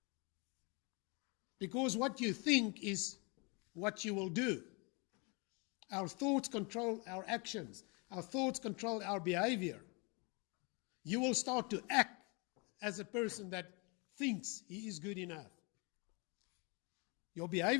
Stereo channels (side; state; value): right; quieter; 31.2 dB